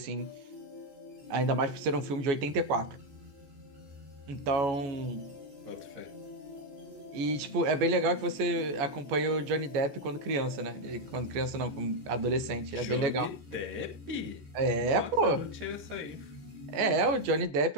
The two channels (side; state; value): left; late; 14 ms